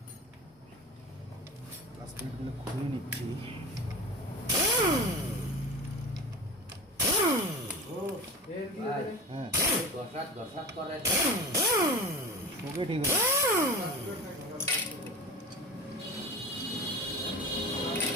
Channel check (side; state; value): both; normal; correlation 0.32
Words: ক্লাস প্লেটগুলো খুলে নিচ্ছি। হ্যাঁ ওকে, ঠিক আছে,